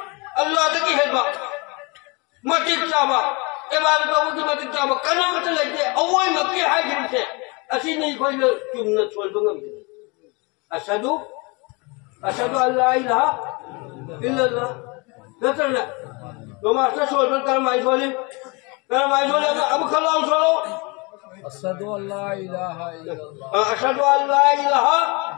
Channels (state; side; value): quieter; right; 28.7 dB